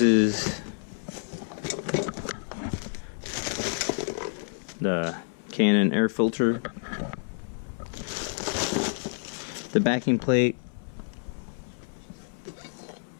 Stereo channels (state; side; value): silent; right; 57 dB below the other